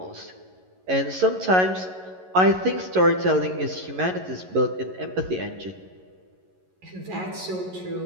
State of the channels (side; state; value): left; late; 11 ms